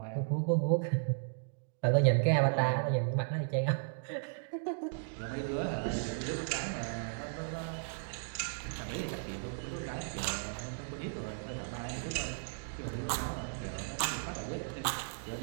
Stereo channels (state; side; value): silent; left; digital silence